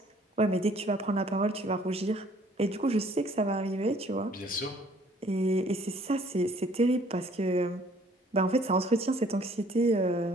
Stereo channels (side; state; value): both; normal; correlation 0.58